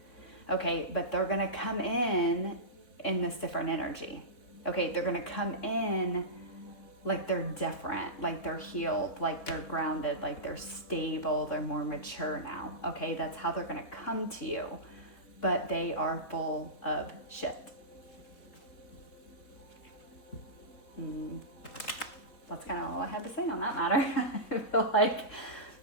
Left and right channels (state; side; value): late; right; 4.2 ms